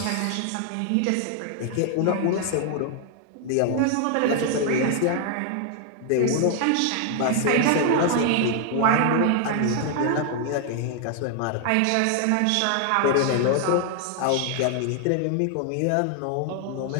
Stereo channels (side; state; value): both; different; correlation 0.00